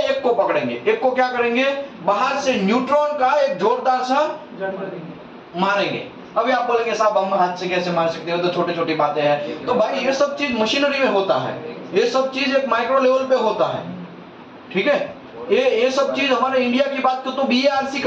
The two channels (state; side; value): identical; both; correlation 1.00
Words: को पकड़ेंगे, एक को क्या करेंगे? बाहर से न्यूट्रॉन का एक जोरदार सा मारेंगे। अभी आप बोलेंगे साहब हम हाथ से कैसे मार सकते हो, तो छोटी छोटी बातें हैं। तो भाई ये सब चीज मशीनरी में होता है, ये सब चीज एक माइक्रो लेवल पे होता है, ठीक है? ये सब चीज हमारे इंडिया की बात तो BARC